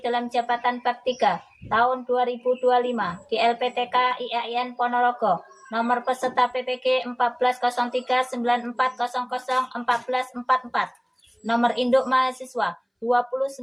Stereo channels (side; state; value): both; identical; correlation 1.00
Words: dalam jabatan Bab 3 tahun 2025 di LPTK IAIN Ponorogo. Nomor peserta PPG 140394001444. Nomor induk mahasiswa